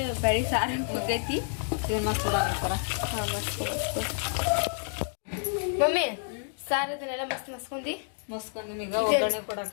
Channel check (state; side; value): silent; right; digital silence